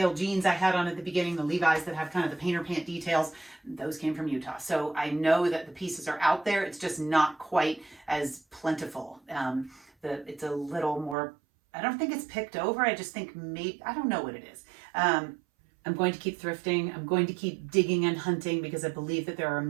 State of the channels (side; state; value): left; drops out; at 11.2 s